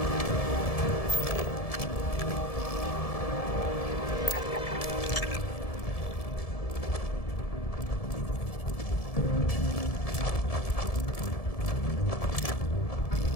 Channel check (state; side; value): late; right; 1.7 ms